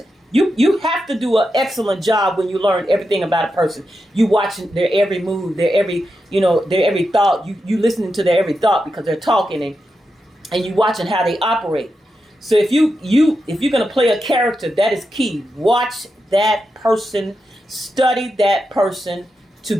You have to do an excellent job when you learn everything about a person. You watching their every move, their every their every thought. You listening to their every thought because they're talking and you watching how they operate. So if you're gonna play a character, that is key. Watch that person, study that person to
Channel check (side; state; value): both; normal; correlation 0.87